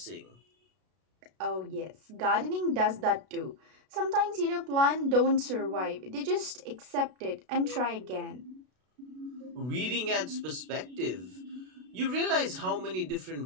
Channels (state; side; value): late; left; 32 ms